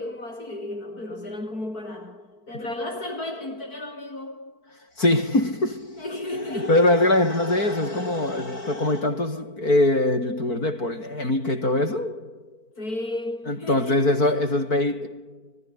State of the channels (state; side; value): late; right; 4.5 ms